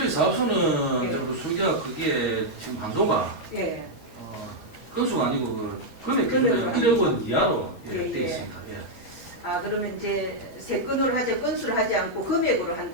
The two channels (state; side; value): late; right; 12 ms